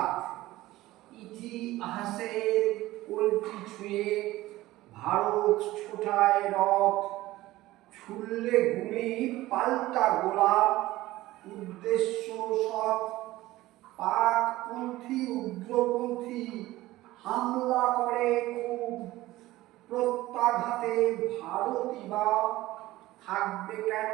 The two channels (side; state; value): left; quieter; 17.2 dB